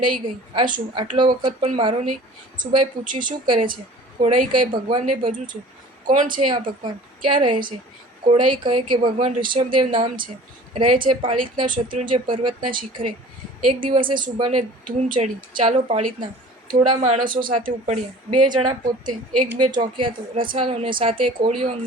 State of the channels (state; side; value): normal; both; correlation 0.45